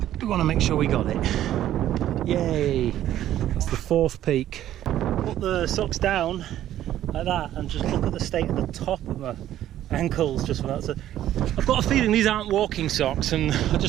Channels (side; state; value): left; quieter; 12.4 dB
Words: we want to make sure we got it. Yay! That's the 4th peak. Put the socks down like that and just look at the state of the top of my ankles just for that. So I've got a feeling these aren't walking socks, and I